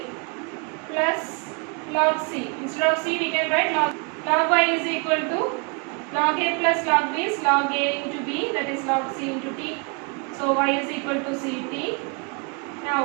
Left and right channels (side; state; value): left; quieter; 33.4 dB